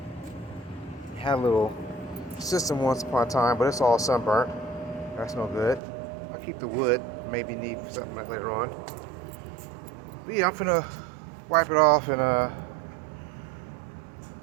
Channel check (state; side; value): drops out; left; at 5.8 s